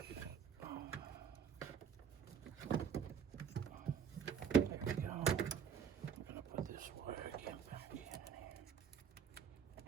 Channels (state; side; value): quieter; left; 7.4 dB